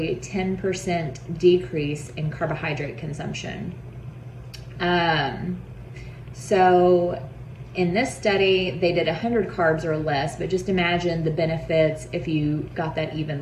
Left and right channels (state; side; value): identical; both; correlation 1.00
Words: 10% decrease in carbohydrate consumption. So in this study, they did 100 carbs or less, but just imagine the benefits if you got that